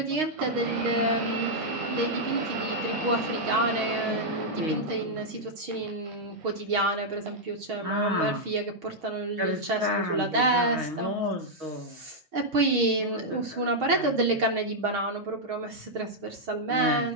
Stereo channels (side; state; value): left; late; 6.4 ms